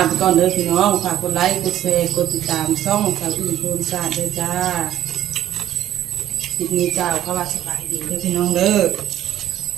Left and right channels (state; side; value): quieter; left; 12.2 dB